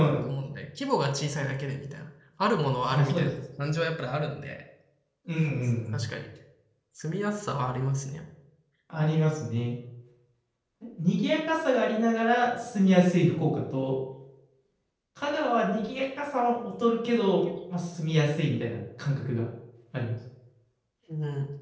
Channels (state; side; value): identical; both; correlation 1.00